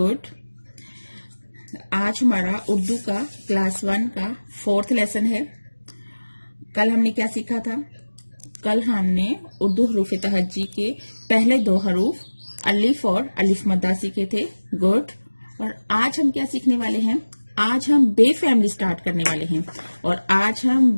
आज हमारा उर्दू का क्लास 1 का 4th लेसन है। कल हमने क्या सीखा था? कल हमने उर्दू हरूफ तहज्जी के पहले 2 हरूफ अलिफ और अलिफ मद्दा सीखे थे। गुड। और आज हम क्या सीखने वाले हैं? आज हम बे फैमिली स्टार्ट करने वाले हैं और आज हम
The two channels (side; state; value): both; inverted; correlation -1.00